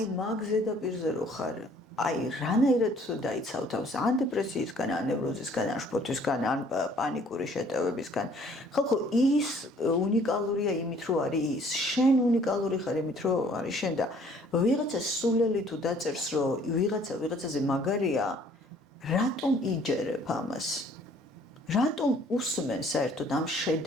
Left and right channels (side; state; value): both; normal; correlation 0.58